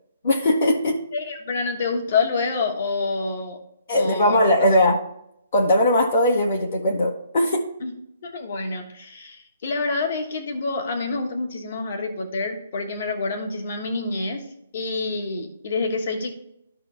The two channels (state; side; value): inverted; both; correlation -0.66